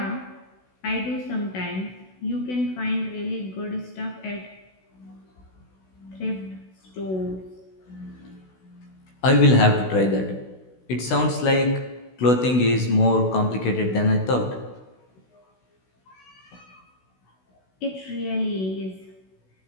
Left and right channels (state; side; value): late; right; 16 ms